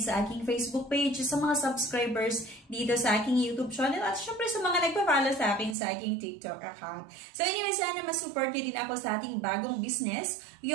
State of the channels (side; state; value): left; drops out; at 5.8 s